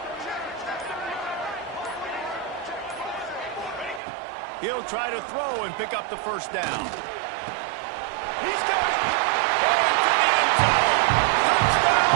He'll try to throw and pick up the first down. He's got it. Into the end zone. Touchdown,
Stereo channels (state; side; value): drops out; left; at 4.0 s